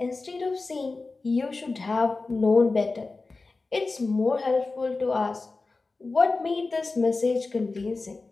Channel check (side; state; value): right; quieter; 3.7 dB